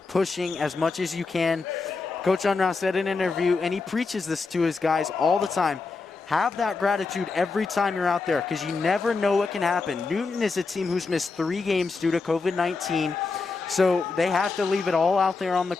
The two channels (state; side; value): quieter; right; 4.2 dB